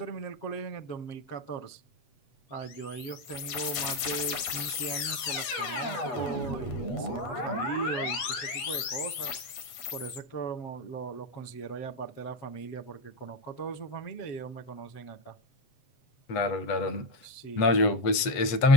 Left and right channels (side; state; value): right; late; 8.2 ms